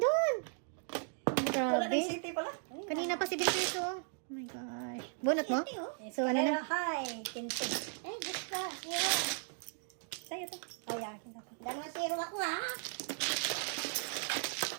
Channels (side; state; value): left; silent; 53 dB below the other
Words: Wala Grabe. ng city pala. Kanina pa 7 pairs oh. Oh my gosh. Bunot mo? Hindi, oh. So, ano Escalera na? high. 15. Eh, Diyos ko. Zero. Sa'yo to. Oh, yakin ako. Dalawa zero ako, ha?